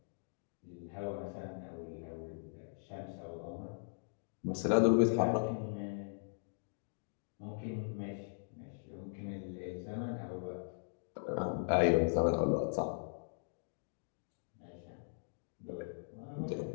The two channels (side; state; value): right; silent; digital silence